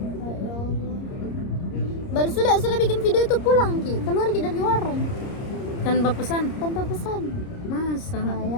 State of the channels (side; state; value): right; late; 30 ms